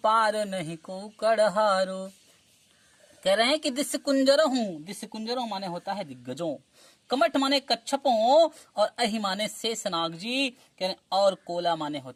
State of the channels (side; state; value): both; identical; correlation 1.00